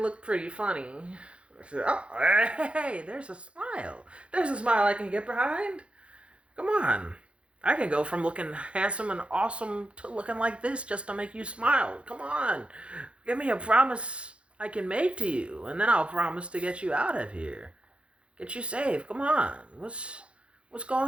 pretty funny. Oh, hey, there's a smile. There's a smile I can get behind. Come on. I can go from looking handsome and awesome to looking like this just to make you smile. Come on. Give me a promise I can make to you, and then I'll promise to get you out of here. Get you safe. Come on. What's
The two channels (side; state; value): left; late; 0.059 ms